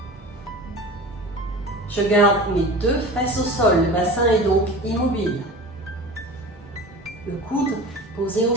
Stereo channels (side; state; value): both; normal; correlation 0.35